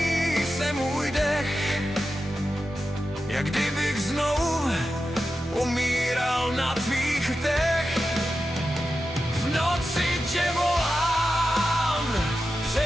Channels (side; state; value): both; normal; correlation 0.91